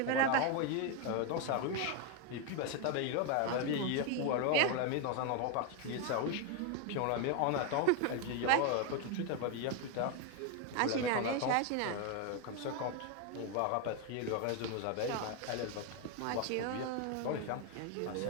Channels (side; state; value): both; different; correlation 0.01